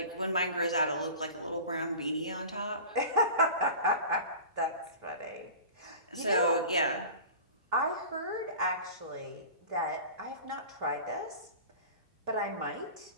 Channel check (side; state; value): both; inverted; correlation -0.37